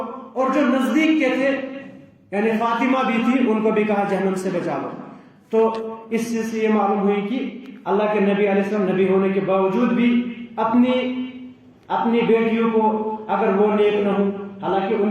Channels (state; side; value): identical; both; correlation 1.00